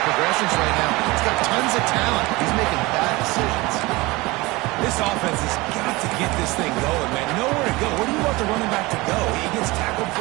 progressions right now. He's got tons of talent. He's making bad decisions. This offense has got to get this thing going, man. Nowhere to go. Where do you want the running back to go? He gets tackled for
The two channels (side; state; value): left; quieter; 22.3 dB